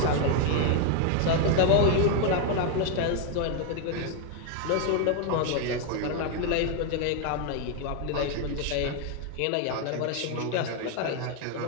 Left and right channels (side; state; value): both; different; correlation 0.01